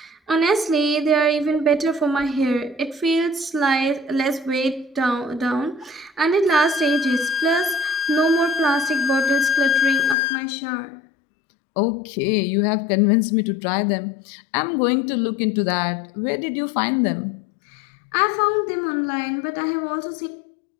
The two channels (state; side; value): drops out; right; at 10.2 s